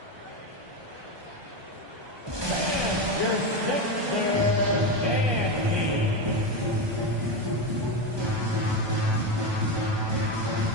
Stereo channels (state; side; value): late; left; 1.2 ms